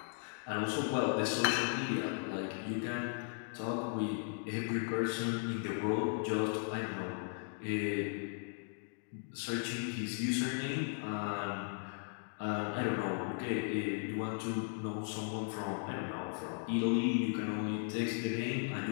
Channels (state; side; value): silent; right; 53 dB below the other